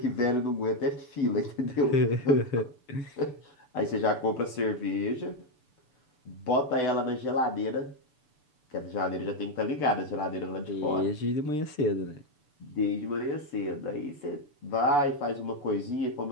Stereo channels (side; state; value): right; late; 6.9 ms